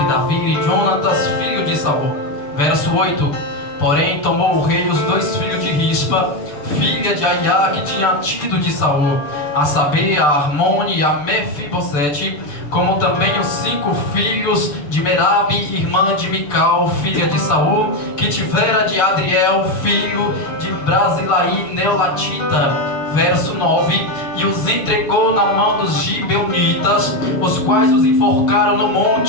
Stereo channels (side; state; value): right; late; 6.8 ms